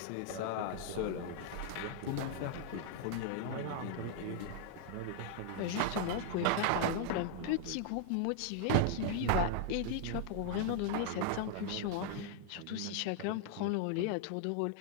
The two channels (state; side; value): different; both; correlation -0.01